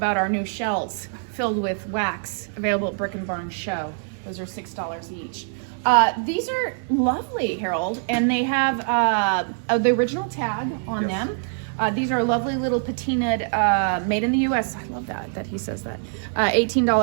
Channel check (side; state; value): left; silent; 63 dB below the other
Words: our new shells filled with wax available at Brick and Barn Show. Those are $6 each. These are lovely, Harold, and they have the original tag on them. These are lovely little patinaed, made in the U.S. I love that he says that.